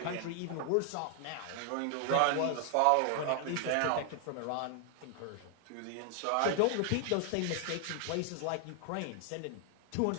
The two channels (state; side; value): different; both; correlation 0.00